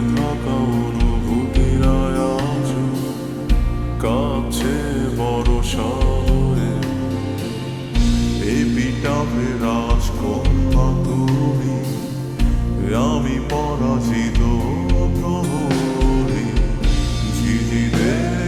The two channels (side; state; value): both; identical; correlation 1.00